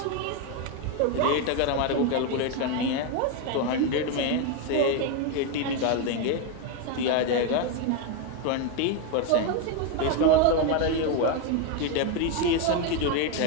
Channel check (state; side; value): different; both; correlation 0.02